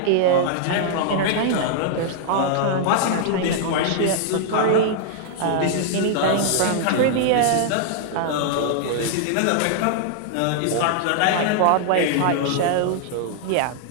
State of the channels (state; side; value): different; both; correlation -0.01